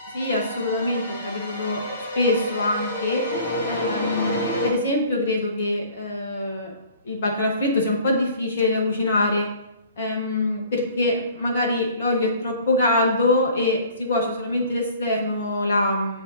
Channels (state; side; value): inverted; both; correlation -0.50